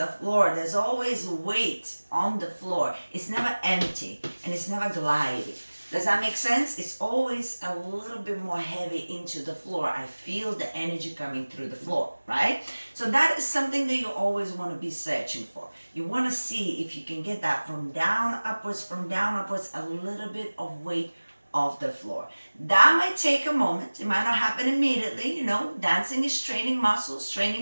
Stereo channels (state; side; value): inverted; both; correlation -1.00